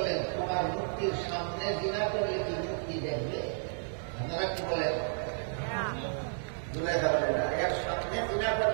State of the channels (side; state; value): left; silent; digital silence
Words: তোমার মূর্তির সামনে জিনা করলে কি মূর্তি দেখবে? আপনারা কি বলেন? জুলাইখা বলেন না, এর সামনে জিনা